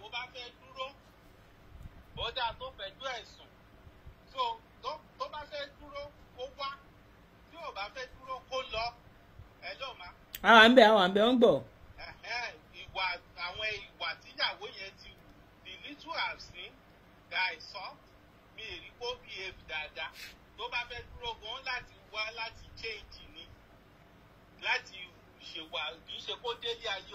bá fẹ́ dúró ó dáa tó fẹ̀jú ẹ̀sùn tó bá fẹ́ dúró kó wá tí ò bá fẹ́ dúró kó lọ ẹ ló má. àwọn àǹbẹ̀ ń gbọ́. àwọn ìwà tíyàwó yẹn ti wù the little I've seen that I saw mi ì rí kó behave dáadáa tó bá fẹ́ dúró gan láti wá láti change ni láti ṣèwà kì í ṣe kó délé ayé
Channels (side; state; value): both; identical; correlation 1.00